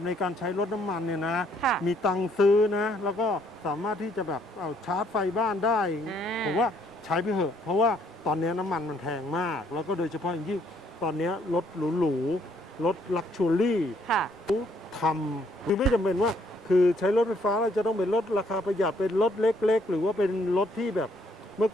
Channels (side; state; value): both; normal; correlation 0.67